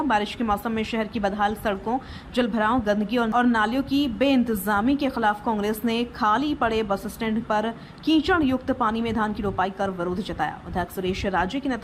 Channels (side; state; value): both; identical; correlation 1.00